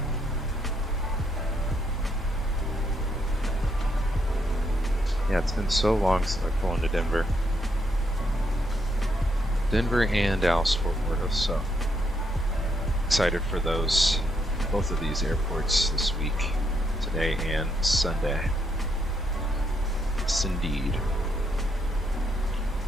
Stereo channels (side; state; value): both; normal; correlation 0.76